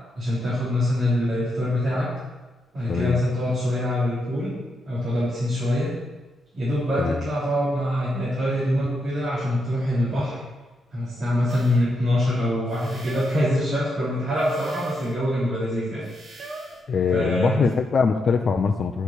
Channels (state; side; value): normal; both; correlation 0.82